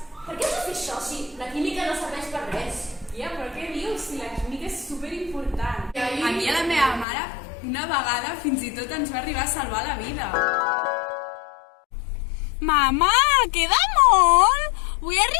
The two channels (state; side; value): drops out; right; at 7.1 s